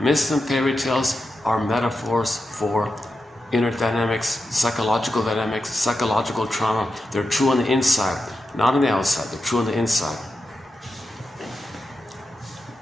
myths and fairy tales are metaphors for inner dynamics, psychological trauma. They're true on the inside, not on the outside. They're true on the inside.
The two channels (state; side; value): normal; both; correlation 0.89